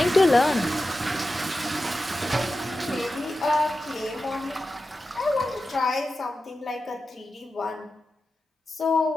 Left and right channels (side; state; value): both; normal; correlation 0.92